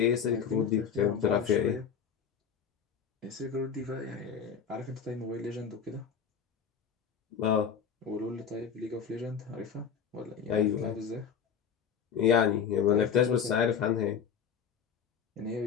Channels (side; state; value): right; quieter; 7.2 dB